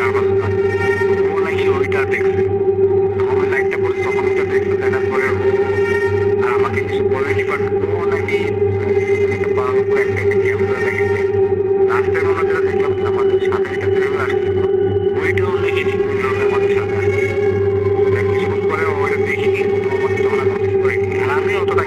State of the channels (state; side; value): identical; both; correlation 1.00